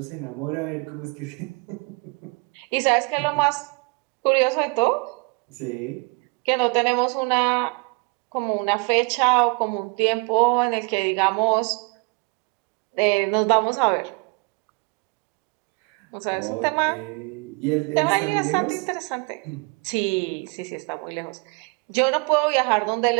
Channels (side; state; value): left; quieter; 29.9 dB